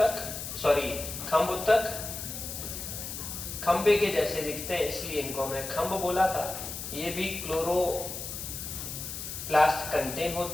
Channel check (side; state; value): left; noise; hiss, 7 dB below the sound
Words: सॉरी खंभ उत्तक, खंबे के जैसे दिखते हैं इसलिए इनको हमने खंभ बोला था। ये भी क्लोरोप्लास्ट कंटेन